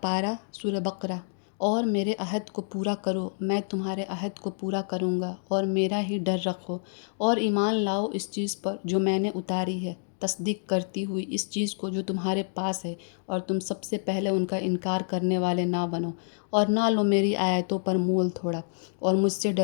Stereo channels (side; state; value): right; silent; digital silence